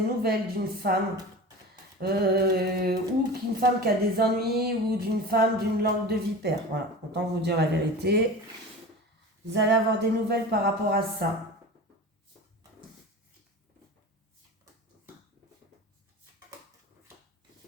nouvelles d'une femme ou qu'une femme qui a des ennuis ou d'une femme d'une langue de vipère. Voilà, autant vous dire la vérité. Vous allez avoir des nouvelles par rapport à ça.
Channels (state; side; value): normal; both; correlation 0.33